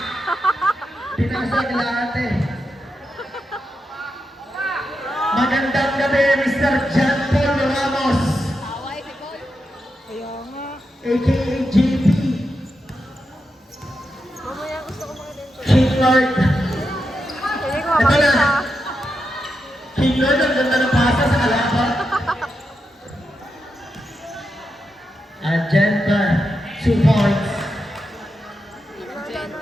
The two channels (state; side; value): normal; both; correlation 0.86